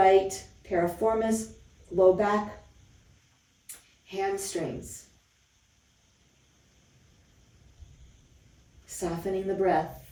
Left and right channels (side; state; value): both; identical; correlation 1.00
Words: piriformis, low back, hamstrings. Softening the breath.